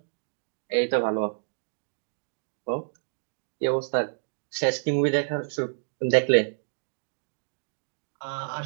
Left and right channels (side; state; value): left; silent; digital silence